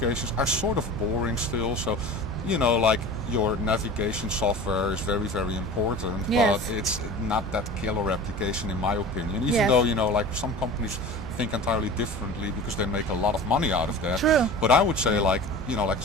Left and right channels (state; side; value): normal; both; correlation 0.36